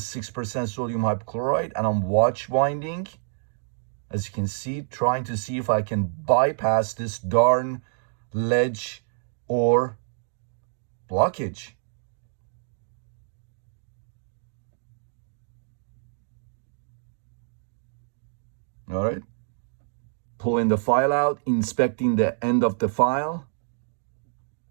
6% sodium hypochlorite, and I'm watch winding, as you can see, trying to see if I can bypass this darn ledge or blockage. All right, pulling the file out, inspecting the end of the file.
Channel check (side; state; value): left; silent; digital silence